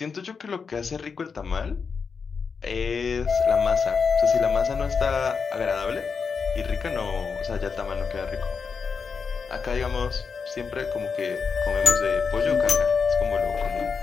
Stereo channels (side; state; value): right; quieter; 5.5 dB